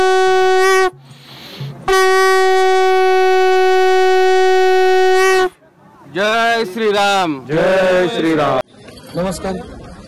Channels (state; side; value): identical; both; correlation 1.00